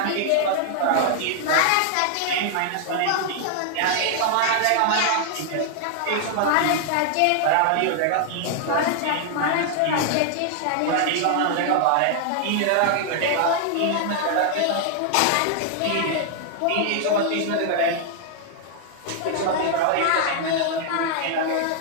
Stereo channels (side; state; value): both; different; correlation 0.00